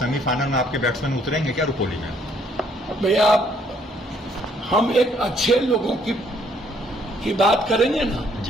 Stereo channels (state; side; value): normal; both; correlation 0.66